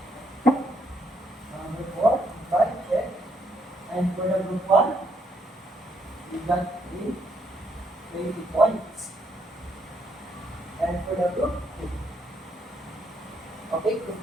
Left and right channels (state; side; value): normal; both; correlation 0.73